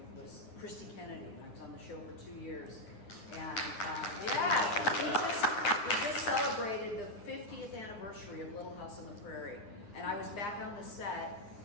was Christy Kennedy, and I was on the show for 2 years. And we just celebrated the 50th anniversary of Little House on the Prairie. And I was back on the set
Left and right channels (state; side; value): late; right; 9.7 ms